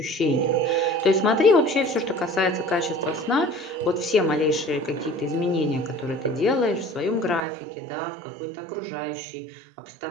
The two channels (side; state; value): left; drops out; at 7.4 s